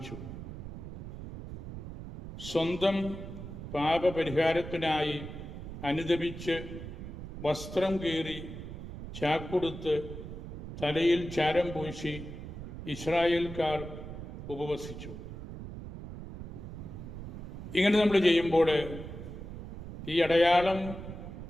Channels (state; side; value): noise; right; rumble, 10 dB below the sound